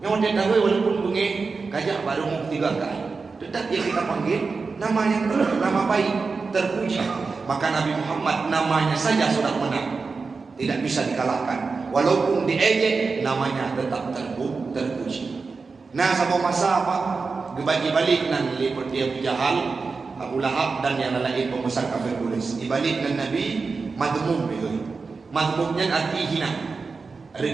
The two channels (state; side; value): quieter; left; 4.5 dB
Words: Yang dia tahu walaupun bunyi kajak baru mau 3 kali. Tetap yang kita panggil nama yang nama baik, terpuji. Maka Nabi Muhammad namanya saja sudah menang. tidak bisa dikalahkan. Walaupun diejek, namanya tetap terpuji. Nah, sama masa apa? Dibagi-balik nan lipat dia Abu Jahal, Abu Lahab dan yang lain pembesar kafir Quraisy. Dibalik nan Nabi madmum begitu. Madmumnya arti hina,